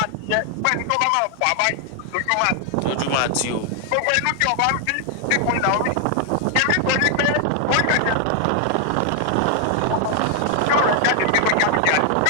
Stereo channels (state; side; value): different; both; correlation 0.00